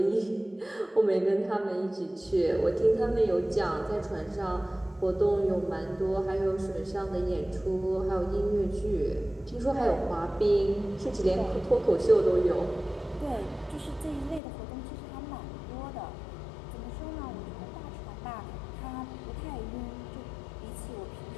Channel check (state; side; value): drops out; right; at 14.4 s